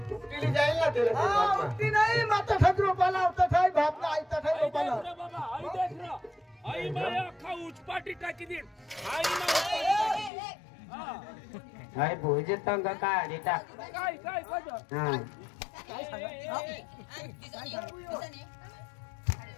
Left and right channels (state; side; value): drops out; right; at 10.3 s